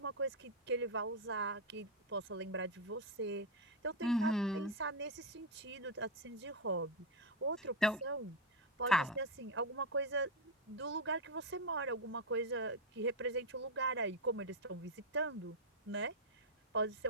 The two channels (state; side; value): normal; both; correlation 0.03